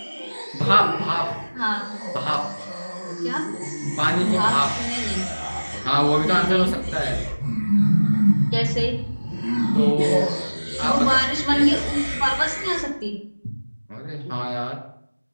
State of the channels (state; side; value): inverted; both; correlation -1.00